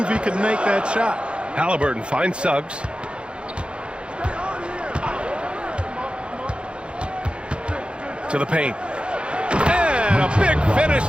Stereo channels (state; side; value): late; left; 0.057 ms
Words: he could make that shot. Halliburton finds Suggs. To the paint. And a big finish